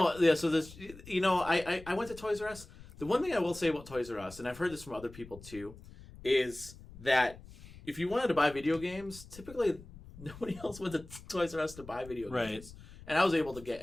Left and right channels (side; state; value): left; noise; rumble, 18 dB below the sound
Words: this, I went to Toys R Us. The one thing I will say about Toys R Us, and I've heard this from other people too, is that if you wanted to buy video games, typically nobody else went to Toys R Us to buy video Right. games. And I was able to get